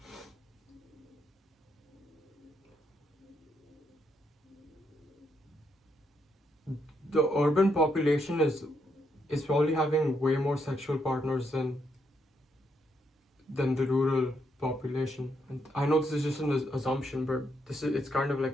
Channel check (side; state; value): both; normal; correlation 0.77